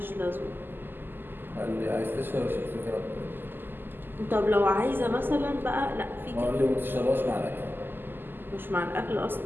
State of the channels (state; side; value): late; left; 0.093 ms